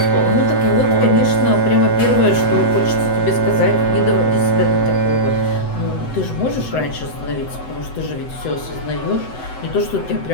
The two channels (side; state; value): right; late; 7.9 ms